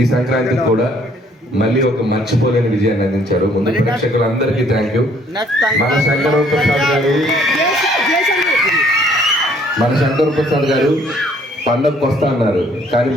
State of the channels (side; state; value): both; normal; correlation 0.62